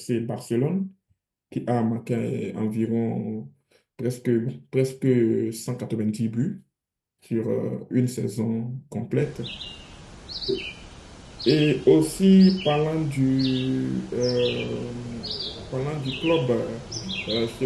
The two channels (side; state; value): both; identical; correlation 1.00